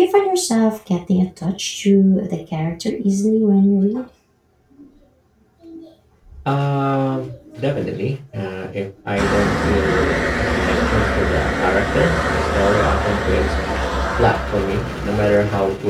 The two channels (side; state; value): both; identical; correlation 1.00